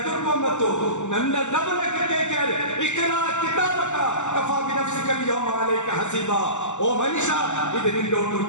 ಬಂತು. ನನ್ನ ರಬ್ಬಿನಕ್ಕೆ ಕೇಳ್ತಾರೆ ಇಕ್ರಾ ಕಿತಾಬಕ ಕಫಾ ಬಿನಫ್ಸಿಕ ಅಲ್ಯೌಮ ಅಲೈಕ ಹಸೀಬಾ. ಓ ಮನುಷ್ಯ ಇದು ನಿನ್ನ ಒಂದು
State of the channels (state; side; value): late; right; 0.84 ms